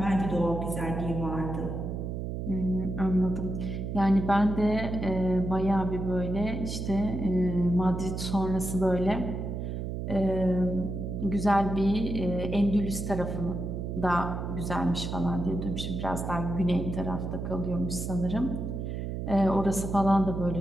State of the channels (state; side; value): noise; right; hum, 4 dB below the sound